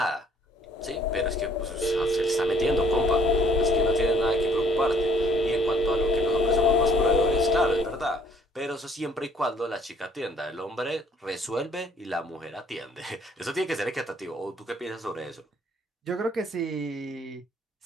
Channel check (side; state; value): both; normal; correlation 0.61